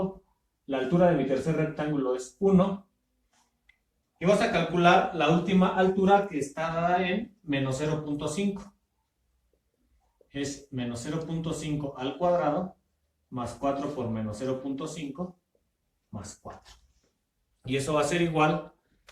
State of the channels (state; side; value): identical; both; correlation 1.00